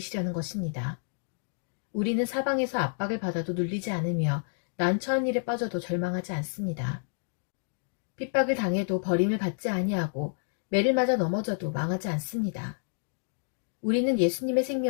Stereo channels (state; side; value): silent; right; digital silence